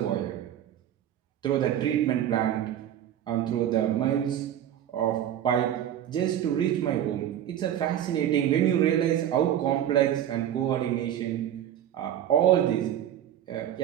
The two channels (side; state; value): left; quieter; 10.8 dB